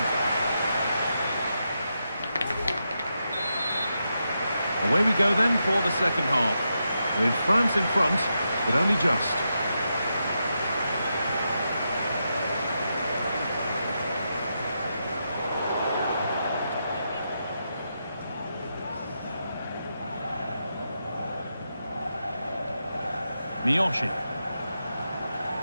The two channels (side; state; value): both; inverted; correlation -0.85